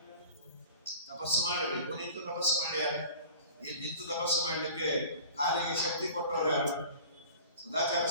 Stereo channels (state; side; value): inverted; both; correlation -0.42